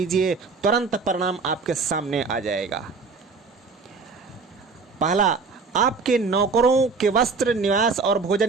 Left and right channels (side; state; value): left; quieter; 4.6 dB